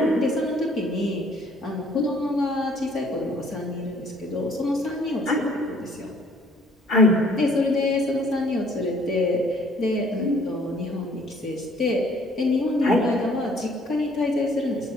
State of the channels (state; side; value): normal; both; correlation 0.59